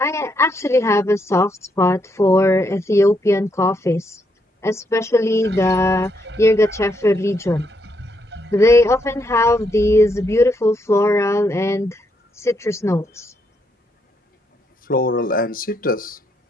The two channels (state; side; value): normal; both; correlation 0.77